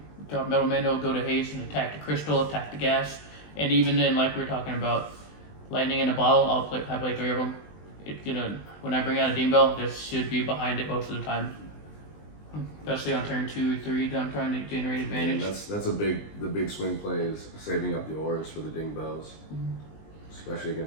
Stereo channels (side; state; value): right; late; 20 ms